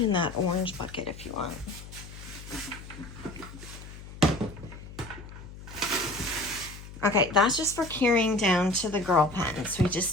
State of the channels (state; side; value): noise; left; hum, 14 dB below the sound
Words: that orange bucket if you want. Okay, that's just for carrying down to the girl pen. So we just